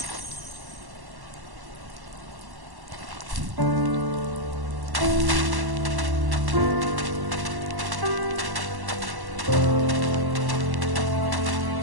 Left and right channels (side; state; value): left; late; 1.1 ms